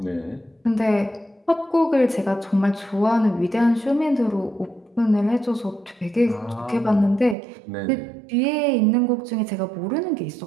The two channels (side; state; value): left; drops out; at 7.4 s